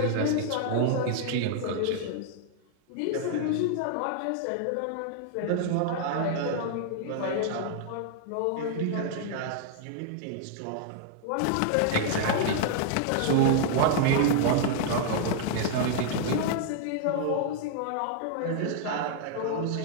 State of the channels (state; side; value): different; both; correlation -0.01